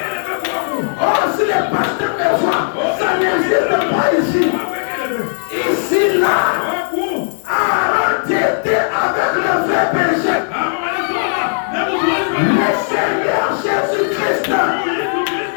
Oh, si le pasteur me voit, ça n'existe pas ici. Ici, là, Aaron était avec le vrai berger. Le Seigneur Jésus-Christ.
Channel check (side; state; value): right; silent; digital silence